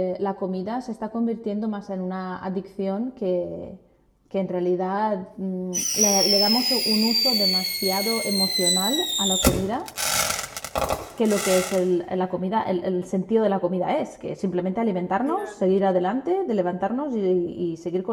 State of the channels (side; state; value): both; identical; correlation 1.00